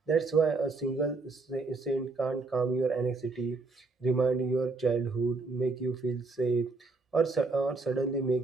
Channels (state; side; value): quieter; left; 3.7 dB